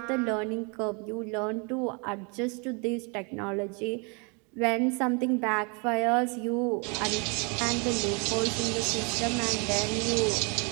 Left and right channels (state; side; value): quieter; left; 33.4 dB